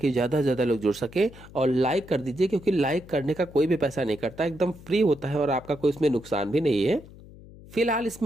ज़्यादा से ज़्यादा लोग जुड़ सके। और लाइक कर दीजिए क्योंकि लाइक करने का कोई भी पैसा नहीं करता, एकदम फ्री होता है और आपका कोई इसमें नुकसान भी नहीं है। फिलहाल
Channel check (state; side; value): noise; left; hum, 19 dB below the sound